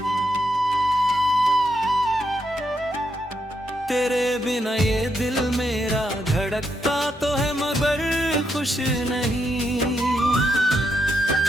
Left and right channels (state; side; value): normal; both; correlation 0.80